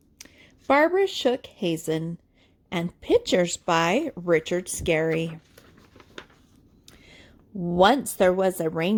Barbra Hazen and pictures by Richard Scarry. Once there was a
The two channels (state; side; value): identical; both; correlation 1.00